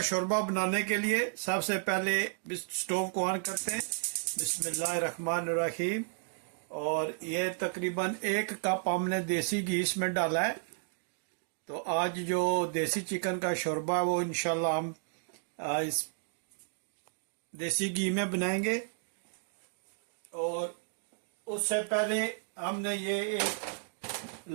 शोरबा बनाने के लिए सबसे पहले स्टोव को ऑन करते हैं। बिस्मिल्लाहिर्रहमानिर्रहीम। और ये तकरीबन 1 कप हमने देसी घी इसमें डाला है। तो आज जो देसी चिकन का शोरबा है वो इंशाल्लाह हम इस देसी घी में बनाएंगे। और उससे पहले हमने ये एक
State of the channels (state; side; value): silent; left; digital silence